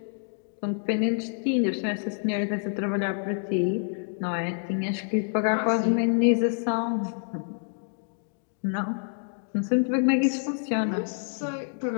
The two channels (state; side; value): silent; right; 60 dB below the other